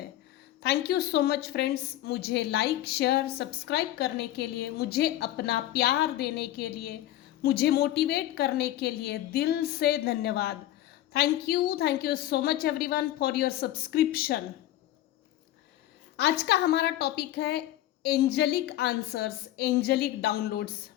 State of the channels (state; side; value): quieter; right; 13.9 dB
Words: Thank you so much friends, मुझे लाइक शेयर सब्सक्राइब करने के लिए, मुझे अपना प्यार देने के लिए, मुझे मोटिवेट करने के लिए दिल से धन्यवाद। Thank you so much everyone for your subscription. आज का हमारा टॉपिक है एंजलिक आंसर्स, एंजलिक डाउनलोड्स।